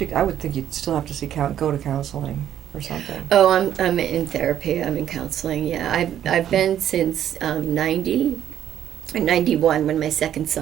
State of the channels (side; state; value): left; quieter; 10.6 dB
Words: I would think you'd still have to go to counseling or something. Oh, I'm in therapy. I'm in counseling, yeah. I've been since 90. in 91 when my second